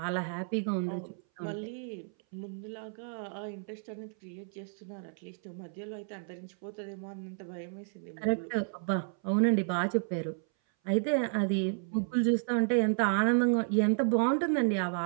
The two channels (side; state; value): left; silent; 57 dB below the other